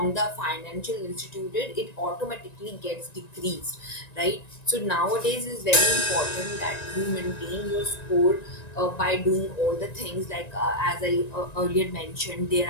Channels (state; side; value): late; right; 1.9 ms